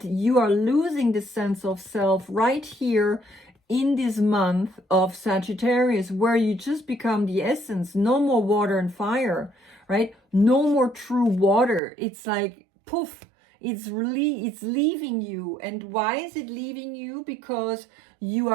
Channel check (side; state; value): left; drops out; at 11.8 s